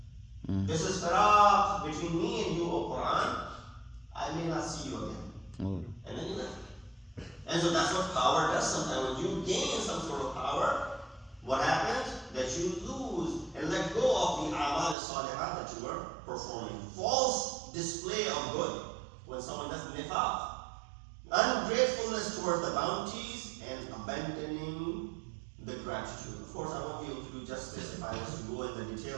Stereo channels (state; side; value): drops out; left; at 15.0 s